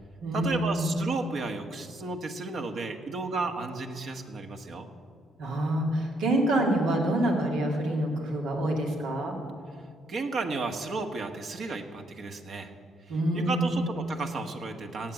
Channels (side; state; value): both; normal; correlation 0.72